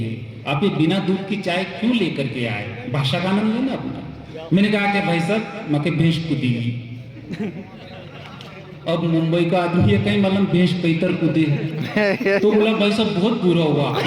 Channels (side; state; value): both; identical; correlation 1.00